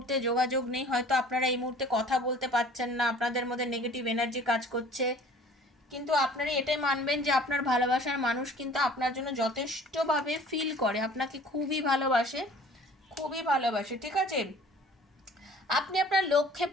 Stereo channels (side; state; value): both; normal; correlation 0.49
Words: যোগাযোগ নেই, হয়তো আপনারা এই মুহূর্তে কথা বলতে পারছেন না, আপনাদের মধ্যে নেগেটিভ এনার্জি কাজ করছে। কিন্তু আপনারা এটাই মানবেন যে আপনার ভালোবাসার মানুষ কিন্তু আপনার জন্য যথেষ্টভাবে ফিল করে, আপনাকে খুবই ভালোবাসে, খুবই ভালোবাসে। ঠিক আছে? আপনি আপনার লক্ষ্যে